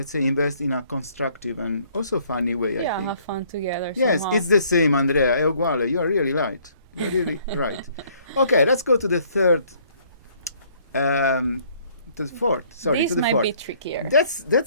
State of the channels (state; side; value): inverted; both; correlation -0.61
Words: say, invest in a constructive and also funny way, I Yeah, think. have fun together. Yes, somehow. it's the same, Andrea. È uguale. You are really right. You're really right. Okay, let's go to the third. To the fourth. Sorry, This to the might fourth. be trickier. That's